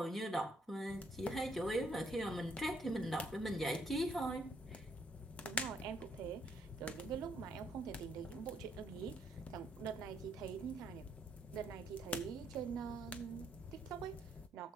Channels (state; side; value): normal; both; correlation 0.70